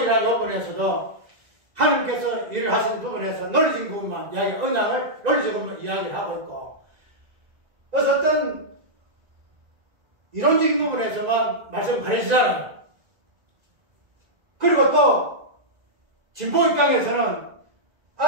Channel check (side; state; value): left; late; 1.9 ms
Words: 부분에서도 하나님께서 일을 하시는 부분에서 논리적인 부분만 언약을 논리적으로 이야기를 하고 있고, 그래서 어떤 이론적인 부분에서만 말씀을 가르치잖아요. 그리고 또 진보 입장에서는